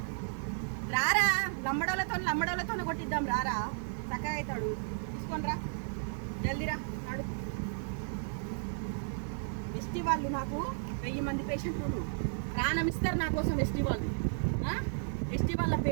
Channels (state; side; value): silent; left; digital silence